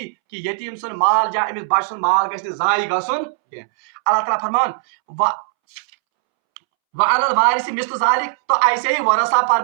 कि यतीम सुन माल या अमिस बच सुन माल गछ जाय गसुन। अल्लाह ताला फरमान वअलल वारिस मिस्ल जालिक, तो ऐसे ही वरसा पर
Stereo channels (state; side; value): silent; left; 67 dB below the other